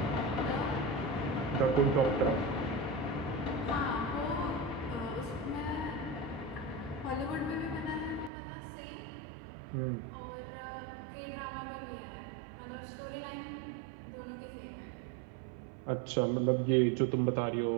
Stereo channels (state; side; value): drops out; left; at 8.3 s